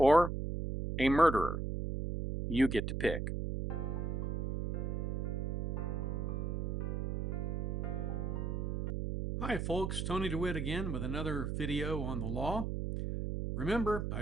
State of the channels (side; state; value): right; noise; hum, 1 dB below the sound